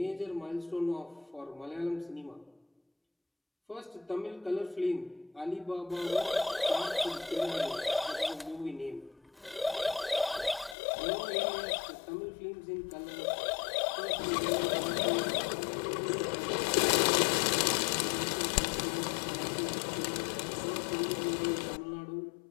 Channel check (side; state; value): right; drops out; at 10.8 s